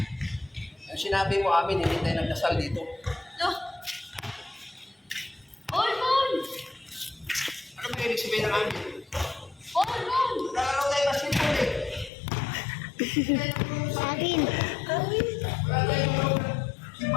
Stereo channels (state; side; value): drops out; right; at 12.1 s